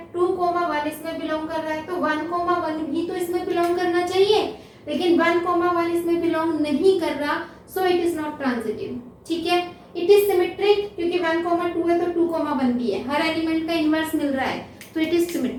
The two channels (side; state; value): both; identical; correlation 1.00